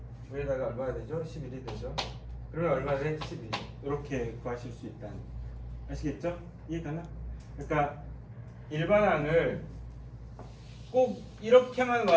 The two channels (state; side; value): identical; both; correlation 1.00